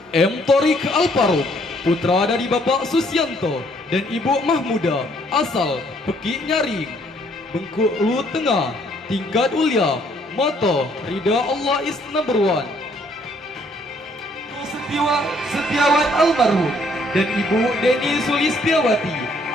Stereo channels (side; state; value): both; normal; correlation 0.65